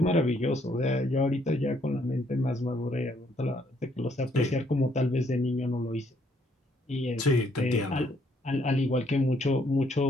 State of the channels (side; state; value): both; normal; correlation 0.69